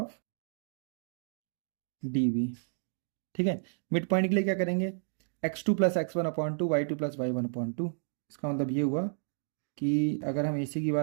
D B. ठीक है, मिड पॉइंट के लिए क्या करेंगे, x2 + x1/2, y2 + y1/2। इसका मतलब ये हुआ कि अगर हम AC की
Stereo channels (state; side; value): silent; left; digital silence